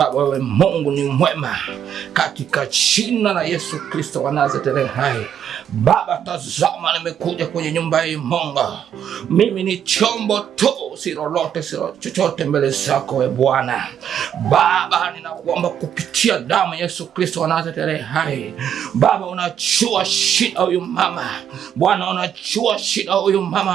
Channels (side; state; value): left; quieter; 9.0 dB